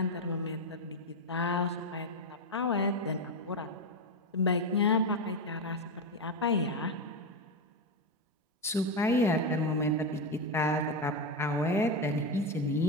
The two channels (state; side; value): normal; both; correlation 0.11